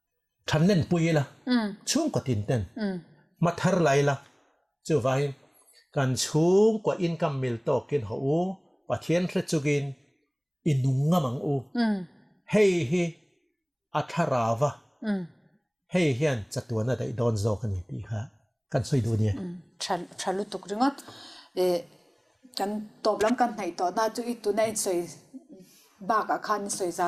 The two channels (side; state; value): both; identical; correlation 1.00